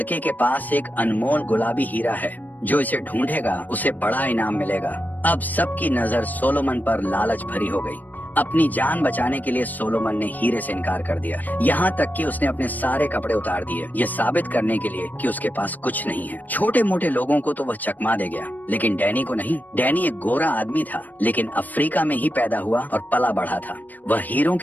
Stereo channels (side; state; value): right; late; 0.084 ms